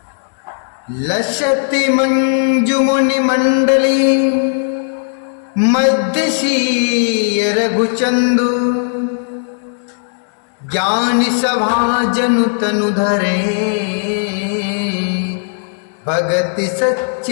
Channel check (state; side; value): silent; right; digital silence